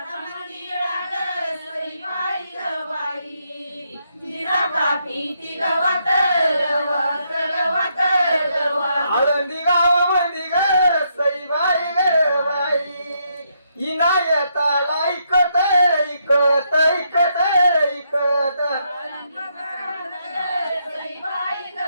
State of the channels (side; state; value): both; inverted; correlation -0.77